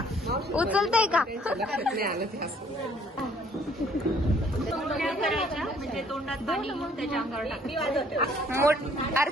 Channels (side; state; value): both; normal; correlation 0.60